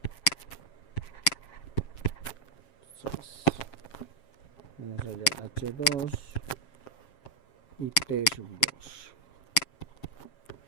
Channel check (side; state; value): right; late; 7.4 ms